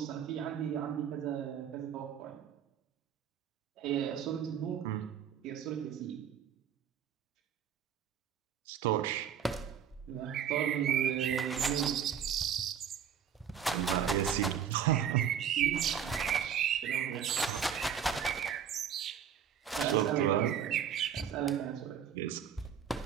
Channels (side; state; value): left; quieter; 8.4 dB